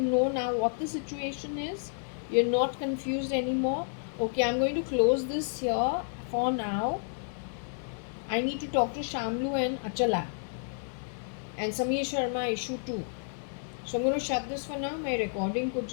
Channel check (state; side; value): silent; right; digital silence